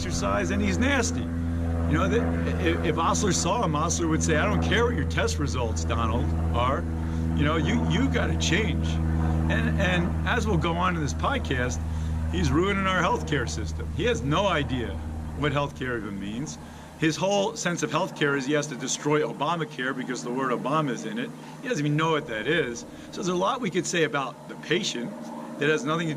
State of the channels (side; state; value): both; identical; correlation 1.00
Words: and he's nasty. If Osler saw him, Osler would say, I don't care what your test results, Donald, are. You got to change. And as we'll go on in this podcast, he's ruining our healthcare system. He has no idea what healthcare even means. His whole sense of healthcare is he has to destroy Obamacare because the word Obama is in it. He doesn't even know what that is. So there's a lot we could say about the patient that has nothing to